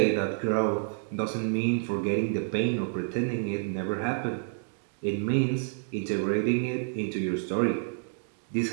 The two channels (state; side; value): silent; left; digital silence